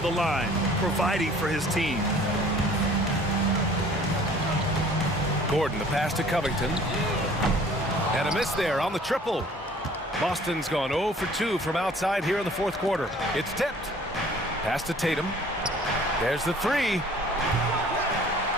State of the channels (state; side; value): normal; both; correlation 0.52